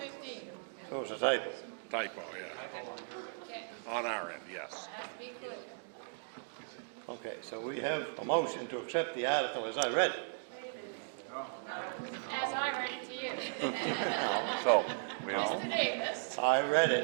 So it's a typo. Typo, yeah. On our end, yes. Okay, so we have a motion to accept the article as I read it. as I read it to you. So, we Mr. all, Davis. I read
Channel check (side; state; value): left; silent; digital silence